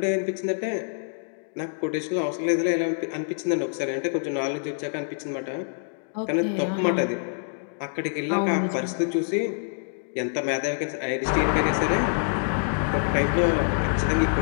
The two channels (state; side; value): silent; right; digital silence